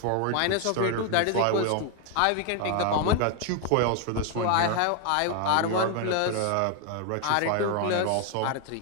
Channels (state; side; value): different; both; correlation 0.01